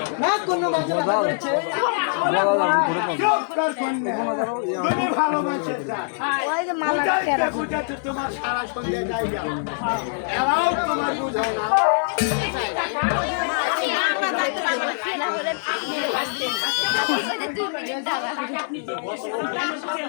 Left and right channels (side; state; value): right; silent; 57 dB below the other